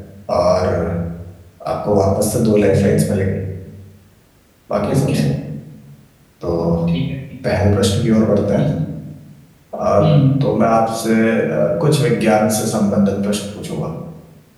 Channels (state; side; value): identical; both; correlation 1.00